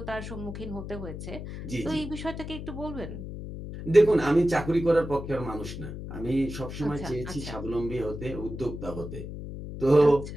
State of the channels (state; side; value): noise; left; hum, 9 dB below the sound